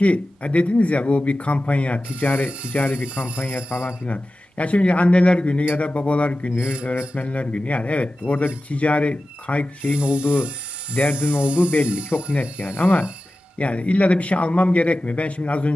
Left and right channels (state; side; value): normal; both; correlation 0.94